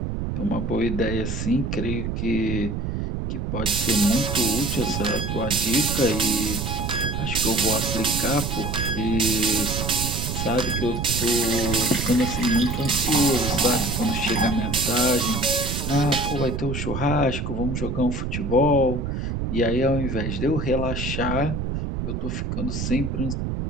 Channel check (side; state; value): right; noise; rumble, 3 dB below the sound